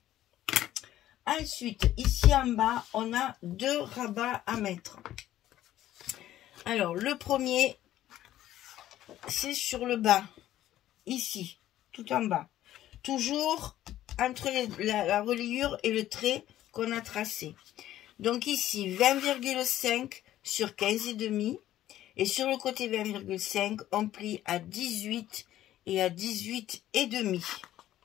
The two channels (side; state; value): right; quieter; 13.2 dB